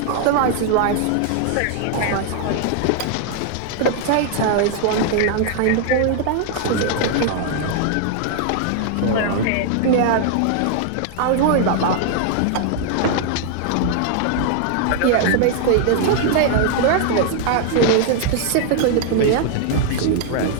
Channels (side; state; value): both; different; correlation 0.00